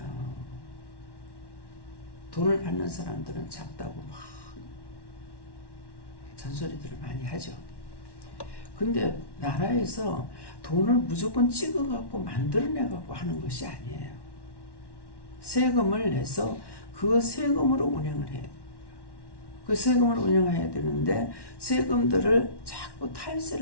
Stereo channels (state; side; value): late; right; 1.1 ms